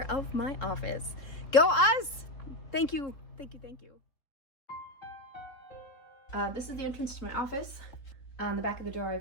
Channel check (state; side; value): late; right; 3.6 ms